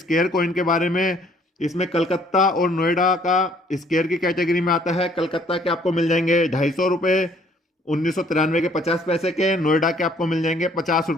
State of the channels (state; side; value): normal; both; correlation 0.61